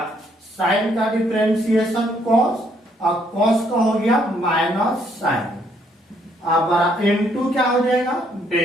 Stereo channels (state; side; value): normal; both; correlation 0.69